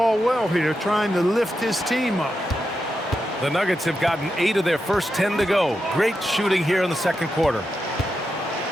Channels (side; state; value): both; normal; correlation 0.87